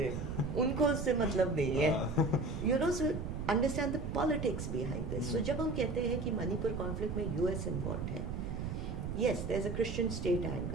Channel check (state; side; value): noise; right; rumble, 4 dB below the sound